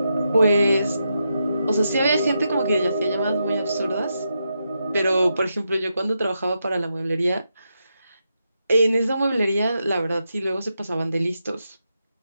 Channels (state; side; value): inverted; both; correlation -0.84